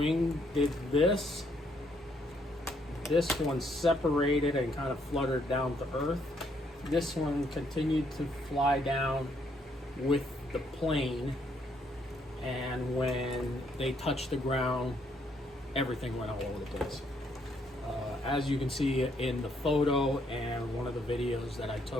did this. This one separated and kind of fluttered down to earth. This one continued to fly down with the plane, and when they touched the ground, everything went all over the place. As you can see in the photo and one of the videos that I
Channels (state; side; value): normal; both; correlation 0.71